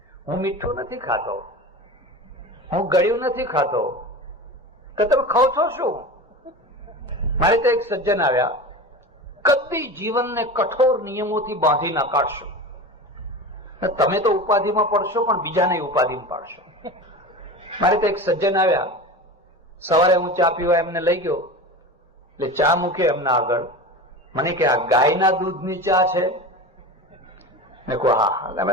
હું મીઠું નથી ખાતો, હું ગળ્યું નથી ખાતો, કે તમે ખાવ છો શું? મારે તો એક સજ્જન આવ્યા, કદી જીવનને કઠોર નિયમોથી બાંધી ના કાઢશો. તમે તો ઉપાધિમાં પડશો પણ બીજાને ઉપાધિમાં પાડશો. મારે તો એક સજ્જન આવ્યા, સવારે હું ચા પીવા એમને લઈ ગયો, એટલે ચા મૂક્યો એમના આગળ. મને કે આ ગાયના દૂધની ચા છે? મેં કહું હા, અમે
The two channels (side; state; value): both; normal; correlation 0.30